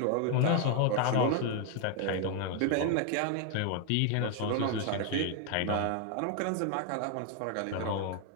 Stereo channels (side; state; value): both; different; correlation 0.00